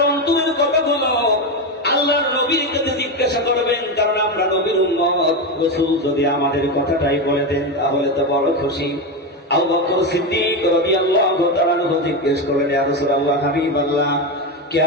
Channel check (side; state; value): both; normal; correlation 0.13